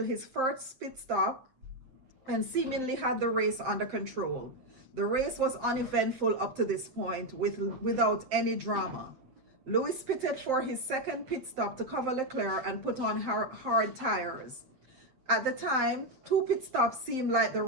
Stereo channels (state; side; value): late; left; 7.8 ms